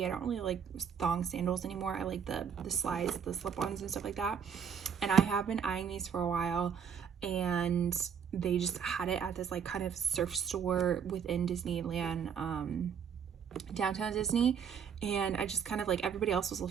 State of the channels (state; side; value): quieter; left; 7.4 dB